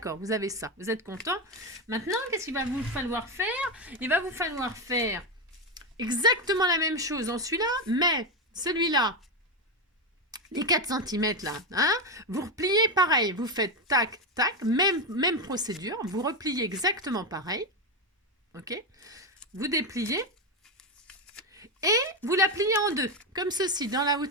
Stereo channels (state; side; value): normal; both; correlation 0.10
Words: vous avez ça. Vous êtes content? Maintenant, qu'est-ce qu'il va vous falloir faire? Il va vous falloir faire exactement la même chose dans celui-là, mais celui-là, les 4 cm là, hein, vous repliez pareil. Vous faites tac, tac, même procédure. Vous repliez exactement pareil. Ok? Vous dépliez et vous la pliez en deux, comme ceci, dans la